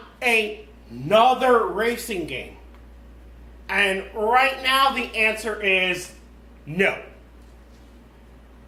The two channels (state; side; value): identical; both; correlation 1.00